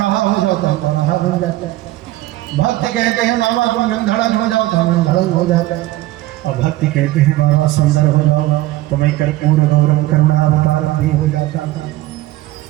हो जाओ तो हम बौराहा बन जाते हैं। भक्त कहते हैं बाबा तुम नंधड़न हो जाओ तो हम नंधड़न हो जाते हैं। और भक्त कहते हैं बाबा सुंदर हो जाओ तो मैं कर्पूर गौरव करुणा अवतारम भी हो जाता था।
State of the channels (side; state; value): left; quieter; 16.8 dB